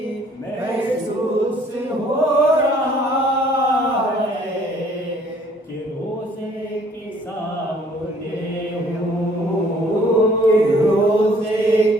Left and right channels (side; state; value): both; normal; correlation 0.59